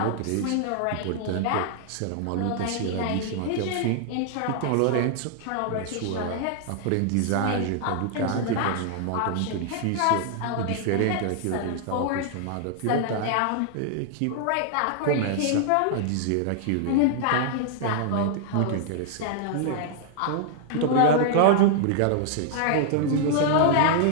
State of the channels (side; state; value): both; different; correlation 0.00